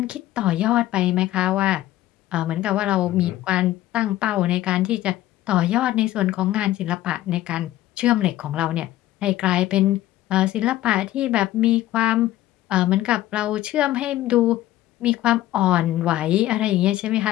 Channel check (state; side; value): quieter; right; 14.7 dB